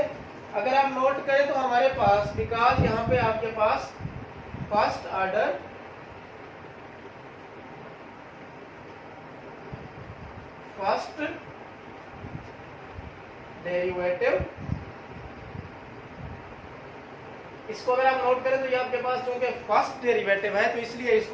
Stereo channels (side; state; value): both; identical; correlation 1.00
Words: अगर आप नोट करें तो हमारे पास, बिकॉज यहाँ पे आपके पास फर्स्ट ऑर्डर फर्स्ट डेरिवेटिव, इसको अगर आप नोट करें तो ये आपके पास चूंकि फर्स्ट डेरिवेटिव है तो इसलिए